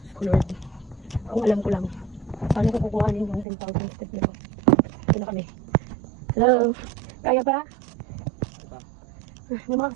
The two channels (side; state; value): left; drops out; at 3.5 s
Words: Lord. Kung alam ko lang. Paano ko kukuhanin yung 10,000 step nito? Ito na kami. Hello? Kaya pa? May mga